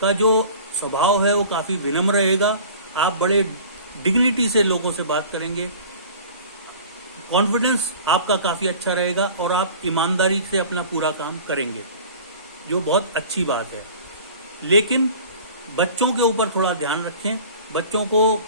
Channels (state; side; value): inverted; both; correlation -0.43